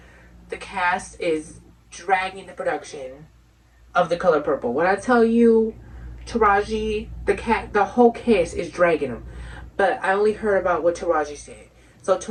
The cast is dragging the production of The Color Purple. When I tell you Taraji, the whole cast is dragging them. But I only heard about what Taraji said.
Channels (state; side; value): identical; both; correlation 1.00